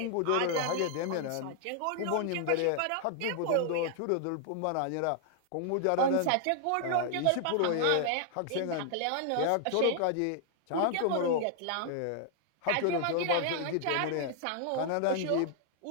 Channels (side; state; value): both; different; correlation 0.00